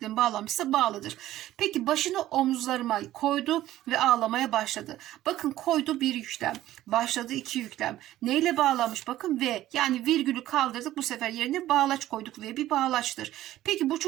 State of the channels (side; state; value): left; quieter; 14.3 dB